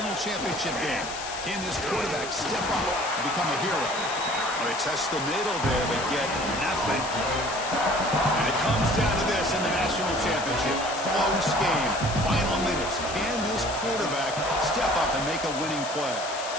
championship game. Can this quarterback step up and become a hero? They test the middle there, but get nothing. And it comes down to this in the national championship. Close game. Final minutes. Can this quarterback step up and make a winning play?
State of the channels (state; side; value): noise; left; hiss, 9 dB below the sound